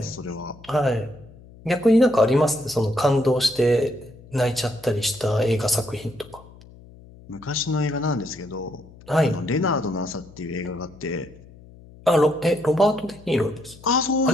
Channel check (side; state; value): left; noise; hum, 22 dB below the sound